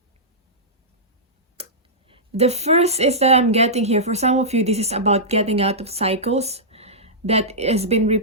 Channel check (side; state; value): both; normal; correlation -0.14